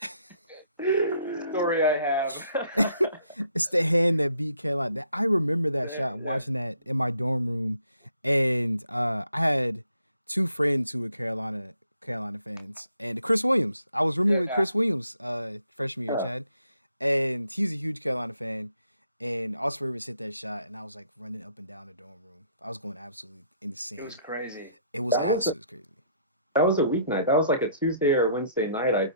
story I have. It's the hand that beat Carolina. I remember that shot, watching that in my dorm room, and I had two friends who were Carolina fans, and Chris Williams. I was rooming with Chris Williams freshman year, Chad, and he's a huge Carolina fan. And Austin Rivers hit that shot, and I was like running up and down the dorm room. I was going absolutely insane. It was crazy. It was absolutely crazy. That was a weeknight. That was like a Tuesday or Wednesday night, I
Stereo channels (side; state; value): both; inverted; correlation -0.68